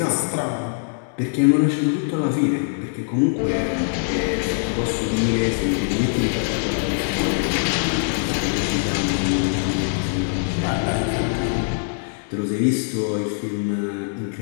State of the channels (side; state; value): right; silent; 64 dB below the other